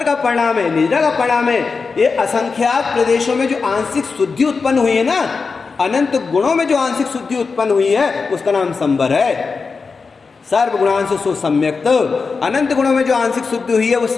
का परिणाम है, निद्रा का परिणाम है। ये असंख्यात प्रदेशों में जो आंशिक शुद्धि उत्पन्न हुई है ना, अनंत गुणों में जो आंशिक शुद्धि उत्पन्न हुई है, उसका नाम संबर है। सर्व गुणांशु सो सम्यक्त, अनंत गुणों में जो आंशिक शुद्धि हुई है वो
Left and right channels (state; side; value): quieter; right; 4.7 dB